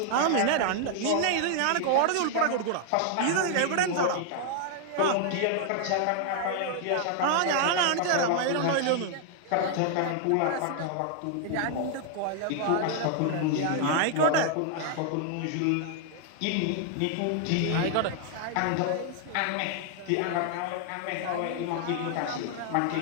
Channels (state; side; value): different; both; correlation 0.00